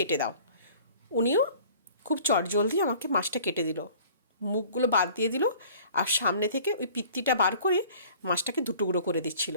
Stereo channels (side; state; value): both; inverted; correlation -0.49